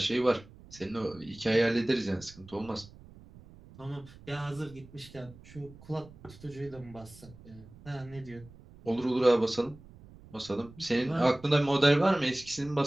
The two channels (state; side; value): noise; right; rumble, 21 dB below the sound